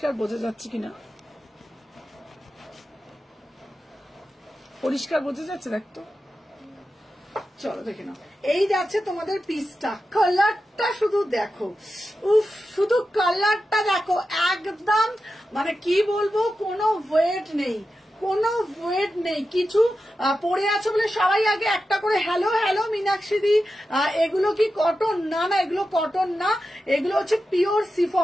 বোঝা যাচ্ছে কিনা, পরিষ্কার বোঝা যাচ্ছে দেখতো? চলো দেখে নাও, এই যাচ্ছে তোমাদের পিসটা, কালারটা শুধু দেখো, উফ, শুধু কালারটা দেখো, একদম মানে কি বলবো, কোনো ওয়েট নেই, কোনো ওয়েট নেই, কিছু পরে আছো বলে সবাই আগে একটা করে হ্যালো হ্যালো মীনাক্ষী দি, এগুলো কি কটন? না না, এগুলো কটন না, এগুলো হচ্ছে পিওর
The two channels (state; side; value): normal; both; correlation 0.91